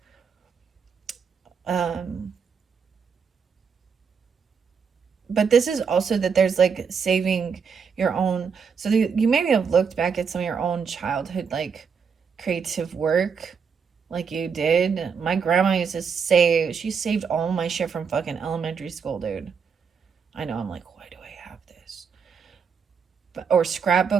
But this is also that there's like saving your own, so you maybe have looked back at some of your own childhood like creative work like you did. My grandma used to save, she saved all my shit from fucking elementary school, dude. I know, I'm like, why do I have this? Or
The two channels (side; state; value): left; quieter; 6.2 dB